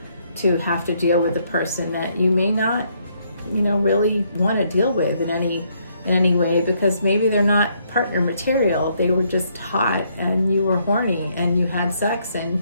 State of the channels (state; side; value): inverted; both; correlation -0.71